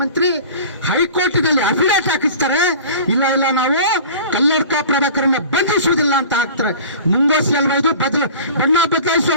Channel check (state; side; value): inverted; both; correlation -0.40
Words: ಹೈಕೋರ್ಟಿನಲ್ಲಿ ಅಫಿಡೇಟ್ ಹಾಕಿಸ್ತಾರೆ, ಇಲ್ಲ ಇಲ್ಲ ನಾವು ಕಲ್ಲಡ್ಕ ಪ್ರಭಾಕರನ್ನ ಬಂಧಿಸುವುದಿಲ್ಲ ಅಂತ ಹಾಕ್ತಾರೆ. ಮುಂಗೋಸಿ ಅಲ್ವಾ ಇದು? ಬಣ್ಣ ಬದಲಾಯಿಸುವ